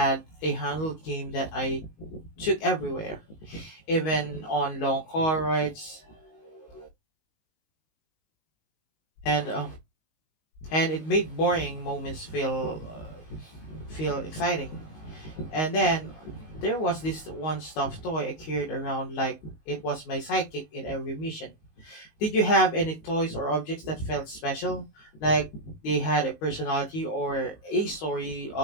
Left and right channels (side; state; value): right; late; 19 ms